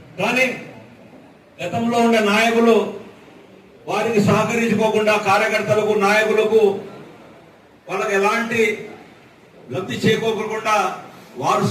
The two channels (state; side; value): identical; both; correlation 1.00